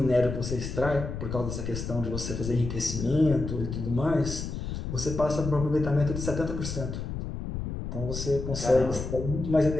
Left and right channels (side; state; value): left; noise; rumble, 5 dB below the sound